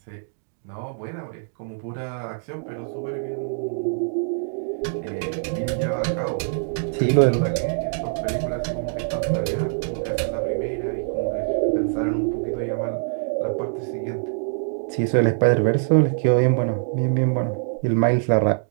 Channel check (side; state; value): left; silent; digital silence